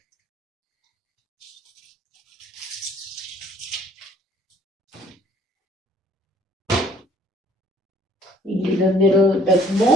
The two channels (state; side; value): normal; both; correlation 0.58